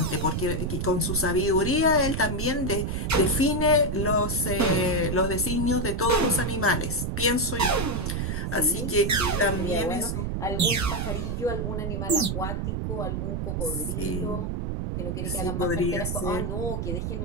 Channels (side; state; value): right; noise; rumble, 2 dB below the sound